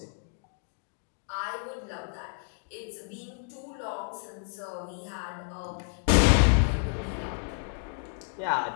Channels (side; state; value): right; silent; 58 dB below the other